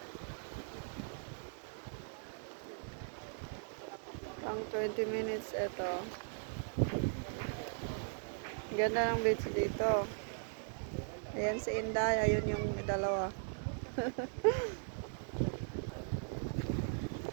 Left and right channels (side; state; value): left; silent; digital silence